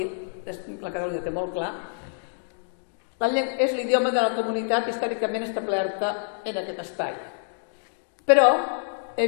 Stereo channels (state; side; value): silent; right; digital silence